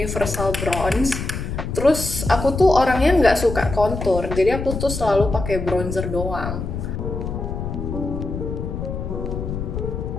Bronze. Terus aku tuh orangnya nggak suka kontur, jadi aku tuh selalu pakai bronzer doang.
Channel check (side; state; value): left; noise; rumble, 5 dB below the sound